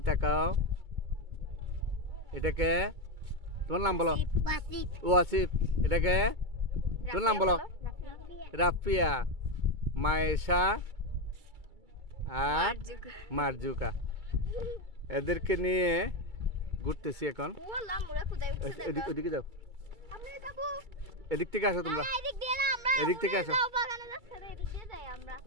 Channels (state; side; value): late; left; 2.3 ms